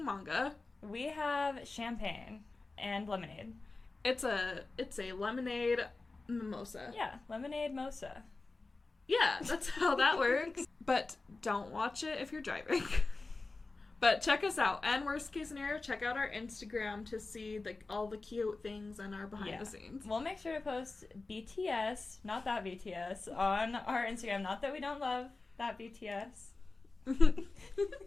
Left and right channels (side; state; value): right; quieter; 3.6 dB